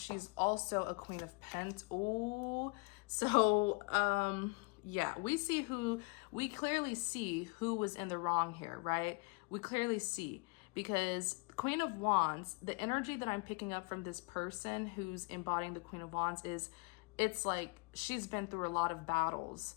also a Queen of Pentacles. Oh, so yeah, we clearly see who was in the wrong here, right? We clearly see, because Queen of Wands, the energy that I'm picking up from this person who's embodying the Queen of Wands is, it's like she's been through a lot of battles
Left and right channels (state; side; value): quieter; right; 30.4 dB